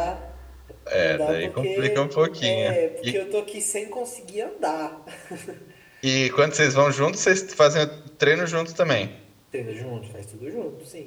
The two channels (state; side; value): identical; both; correlation 1.00